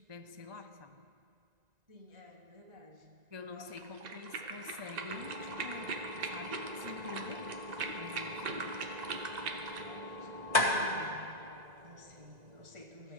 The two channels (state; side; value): late; left; 1.9 ms